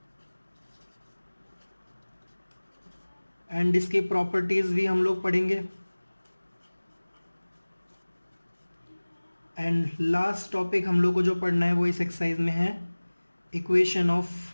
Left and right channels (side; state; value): both; inverted; correlation -1.00